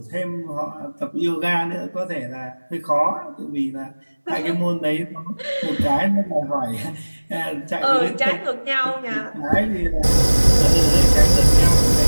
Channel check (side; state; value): both; inverted; correlation -1.00